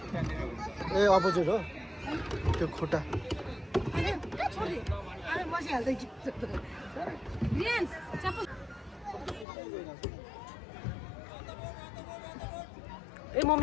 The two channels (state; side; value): drops out; right; at 9.5 s